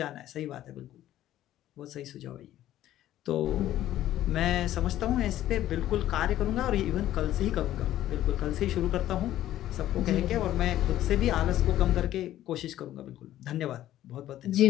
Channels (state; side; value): quieter; right; 13.2 dB